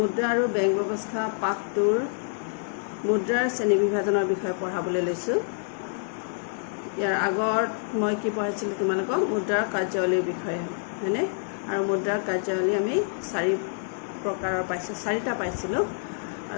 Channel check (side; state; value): right; silent; digital silence